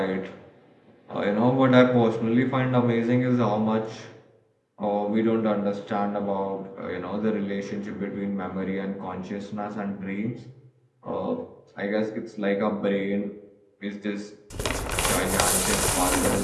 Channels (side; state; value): both; identical; correlation 1.00